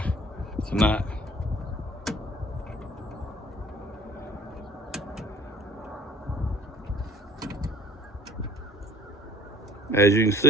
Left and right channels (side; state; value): both; normal; correlation 0.50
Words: tonight. As you can